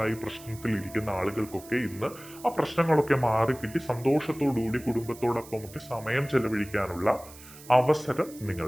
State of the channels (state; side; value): noise; right; hiss, 19 dB below the sound